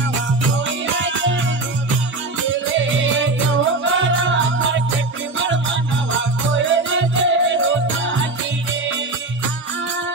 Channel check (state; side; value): quieter; left; 3.2 dB